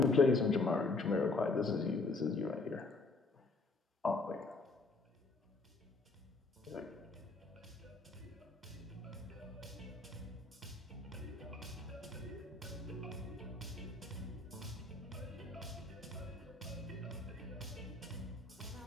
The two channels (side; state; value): right; quieter; 3.5 dB